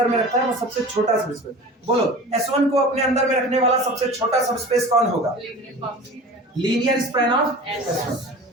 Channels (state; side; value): normal; both; correlation 0.37